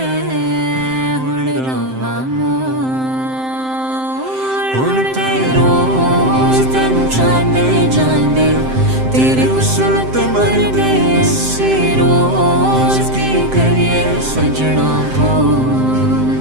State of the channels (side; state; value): left; late; 7.7 ms